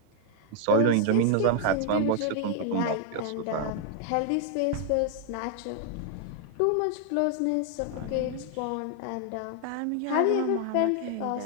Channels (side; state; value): both; different; correlation 0.00